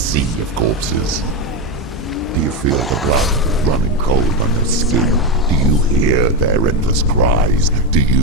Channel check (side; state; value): both; normal; correlation 0.12